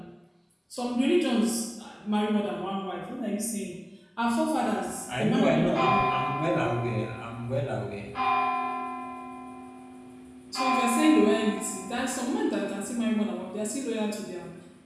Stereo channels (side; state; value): both; identical; correlation 1.00